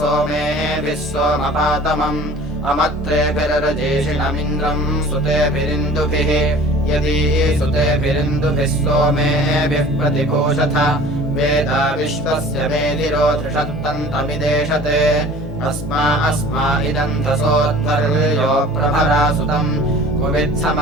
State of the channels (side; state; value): both; normal; correlation 0.45